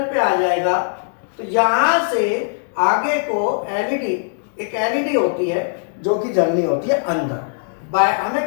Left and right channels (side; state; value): right; silent; digital silence